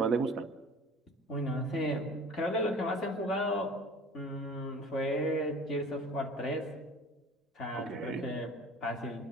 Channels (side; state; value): both; normal; correlation 0.43